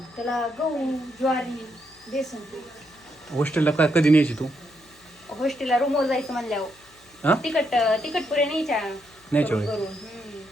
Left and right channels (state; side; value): noise; left; hum, 30 dB below the sound